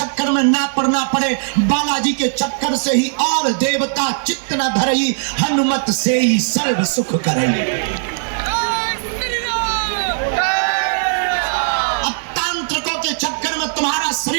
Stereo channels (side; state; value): left; silent; digital silence